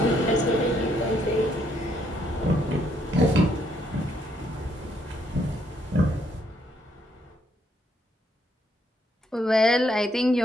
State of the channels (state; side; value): normal; both; correlation 0.72